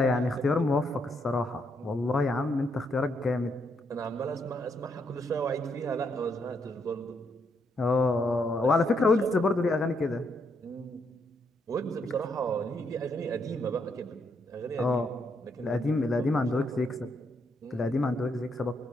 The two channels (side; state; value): both; normal; correlation 0.76